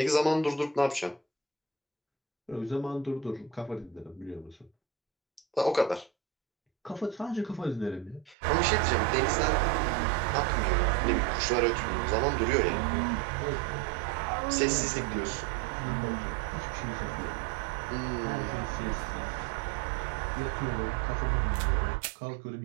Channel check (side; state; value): left; drops out; at 8.3 s